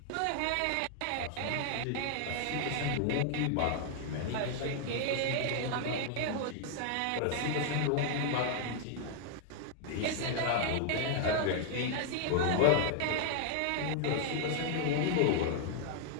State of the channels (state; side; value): different; both; correlation 0.00